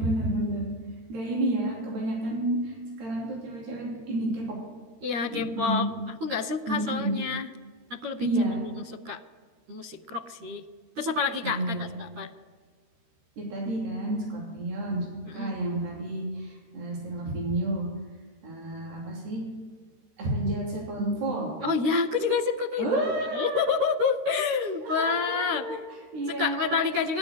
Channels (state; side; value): late; left; 13 ms